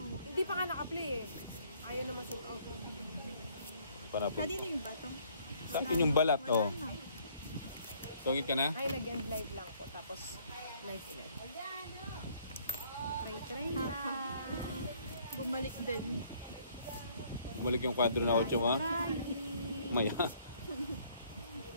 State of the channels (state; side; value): inverted; both; correlation -0.62